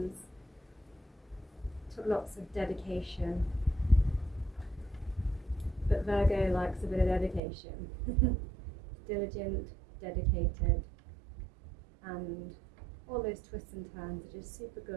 Took lots of dedication. But Virgo likes a bit of dedication. Diligent, dedicated, and all those twists and turns are just super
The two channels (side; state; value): left; drops out; at 7.4 s